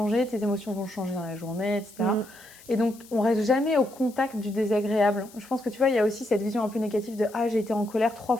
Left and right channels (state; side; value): noise; left; hiss, 22 dB below the sound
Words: tes émotions vont changer dans la journée, etc. Et donc, on reste jamais au contact du désagréable. Je pense que tu vois, il y a aussi cette vision un peu négative de « Ah, j'ai été en colère 3